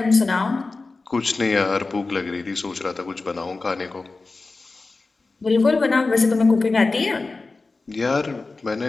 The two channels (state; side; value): quieter; right; 3.7 dB